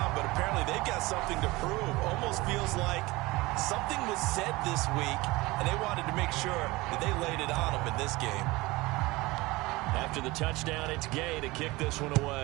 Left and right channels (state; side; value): quieter; left; 21.4 dB